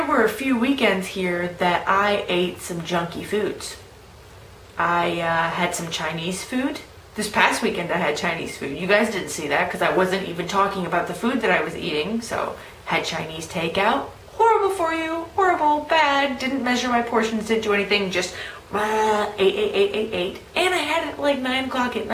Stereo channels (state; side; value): identical; both; correlation 1.00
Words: were a few weekends here that I ate some junky foods. I had some Chinese food. This past weekend I had Chinese food. You guys didn't see that because I wasn't even talking about the food that I was eating. So, had Chinese takeout. Horrible for you. Horrible. Bad. Didn't measure my portions. Didn't do anything. Just ate. And I had it at like 9 o'clock at